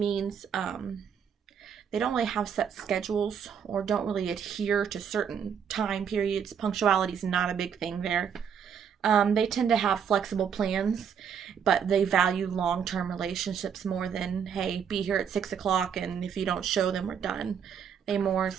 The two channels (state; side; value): quieter; left; 7.6 dB